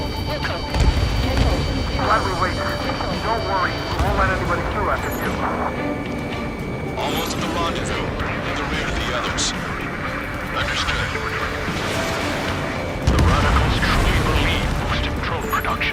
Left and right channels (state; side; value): identical; both; correlation 1.00